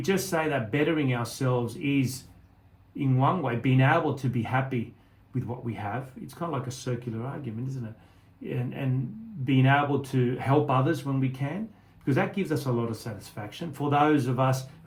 just say that bettering ourselves is, in one way, being able to be happy with what we have, it's kind of like a circular argument, isn't it? And being able to help others when we can, because that gives us a lot of satisfaction. For those of us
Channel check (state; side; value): identical; both; correlation 1.00